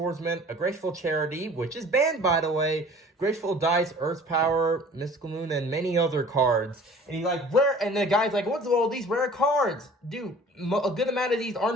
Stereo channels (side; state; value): both; normal; correlation 0.47